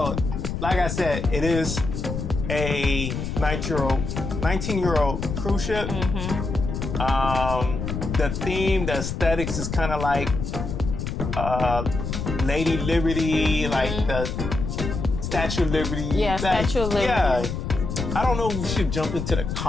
like I said, it is a 19-year-old cruise ship. The theme, the aesthetics is kind of like Lady Liberty, like the Statue of Liberty. Yeah, Statue of Liberty. Yeah. I don't know if we should jump into the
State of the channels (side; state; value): left; noise; rumble, 4 dB below the sound